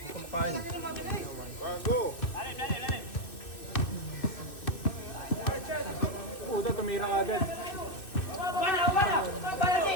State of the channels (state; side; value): late; right; 2.6 ms